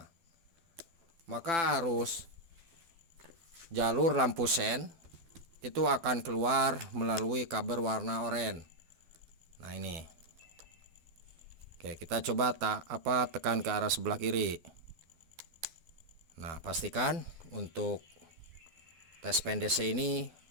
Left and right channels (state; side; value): late; left; 12 ms